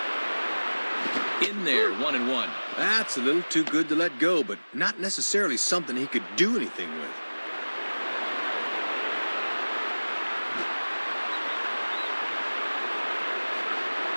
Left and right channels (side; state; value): both; inverted; correlation -1.00